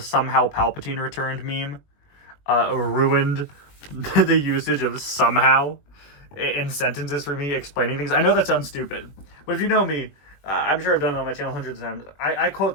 Palpatine returned meme ruined the usage of somehow in sentences for me explaining things. I know that sounds stupid, but if you know me, I'm sure I've done it on my channel hundreds of times. I quote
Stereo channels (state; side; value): late; right; 21 ms